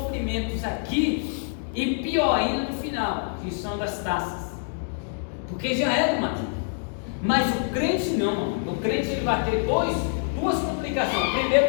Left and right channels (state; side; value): silent; right; digital silence